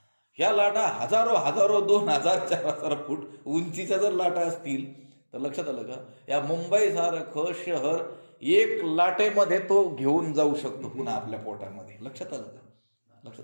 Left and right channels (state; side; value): inverted; both; correlation -1.00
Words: ह्या लाटा हजारो 2000, 4000 फूट उंचीच्या जर लाटा असतील तर लक्षात आलं का. या मुंबई सारखं शहर 1 लाटेमध्ये तो घेऊन जाऊ शकतो पुन्हा आपल्या पोटामध्ये, लक्षात आलं का.